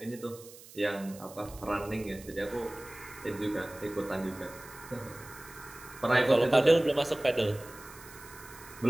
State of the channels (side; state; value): right; noise; hiss, 19 dB below the sound